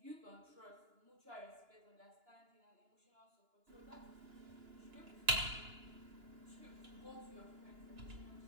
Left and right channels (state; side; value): late; left; 2.9 ms